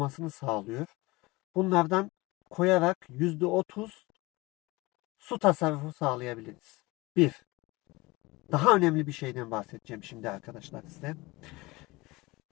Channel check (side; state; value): right; quieter; 22.4 dB